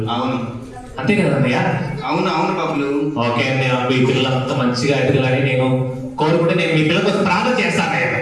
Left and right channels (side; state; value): both; identical; correlation 1.00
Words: అవును అంతే కదా అన్నయ్య? అవును అవును బబ్బులు. ఓకే అన్నయ్య, మీ పిల్లలంతా మంచిగా ఎదగాలని నేను కోరుకుంటే నేను మీ పిల్లల కోసం ప్రార్థన చేస్తాను అన్నయ్య.